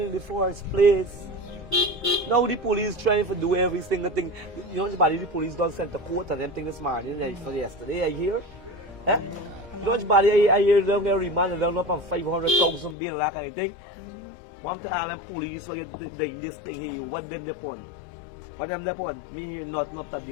the first place. Now the police trying to do every single thing. You know, the police don't send the court and them thing this morning, for yesterday, I hear. Eh? You know, I hear them get remanded, they're not on 500,000 bill, that kind of thing. One to all them police, so doing this thing here, what them upon? What them upon? Me hear nothing up that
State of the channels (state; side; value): drops out; right; at 13.0 s